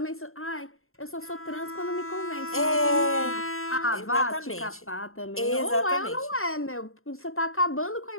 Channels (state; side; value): late; right; 0.61 ms